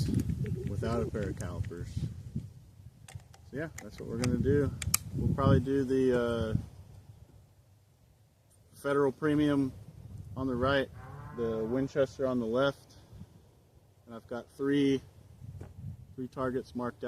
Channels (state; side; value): identical; both; correlation 1.00